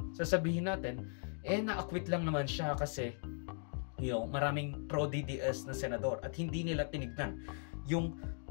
sasabihin natin, na-acquit lang naman siya kasi maraming pro-DDS na senador at hindi nila tinignan yung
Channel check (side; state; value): right; silent; 52 dB below the other